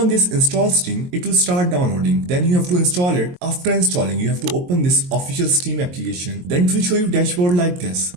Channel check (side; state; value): left; late; 22 ms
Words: this install Steam, it will start downloading. Then you have to install it. After installing, you have to open this official Steam application. Then it will show you dashboard like this.